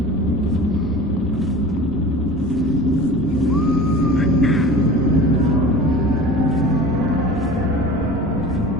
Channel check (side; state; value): both; normal; correlation 0.38